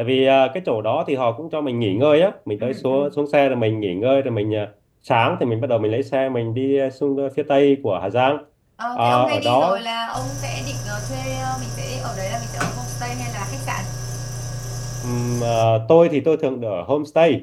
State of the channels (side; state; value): both; identical; correlation 1.00